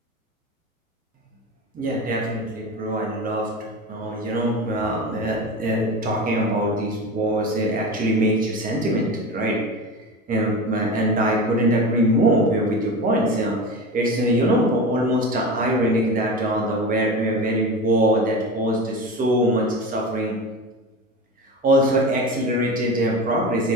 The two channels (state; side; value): normal; both; correlation 0.28